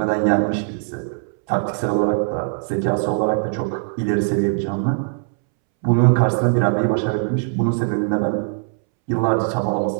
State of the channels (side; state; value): left; silent; 65 dB below the other